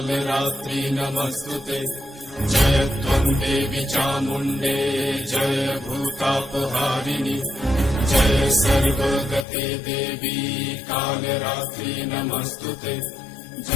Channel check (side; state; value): right; drops out; at 9.5 s